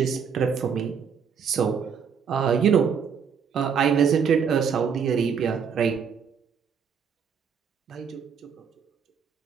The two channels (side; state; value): left; quieter; 6.8 dB